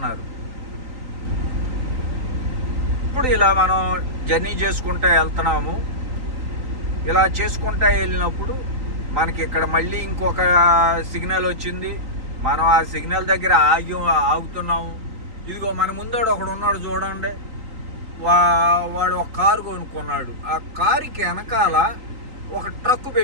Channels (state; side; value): late; left; 3.8 ms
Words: ఇప్పుడు ఇలా మనం జర్నీ చేసుకుంటూ వెళ్తున్నాము. ఇలా చేసుకుంటూ వెళ్ళినప్పుడు మనకి ఇక్కడ మళ్ళీ ఇంకొక సిగ్నల్ వచ్చింది. మనం ఆ సిగ్నల్ దగ్గర ఆగుతున్నాము. ఇదిగో మన ముందోడు ఒకడు ఉన్నాడు చూడండి, వాడు ఒక కారు కొనుక్కున్నాడు. ఆ కారుకి వెనకాల ఒక ట్రక్